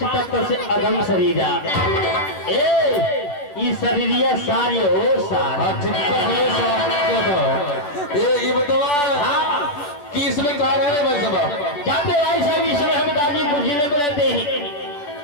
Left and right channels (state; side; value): late; right; 10 ms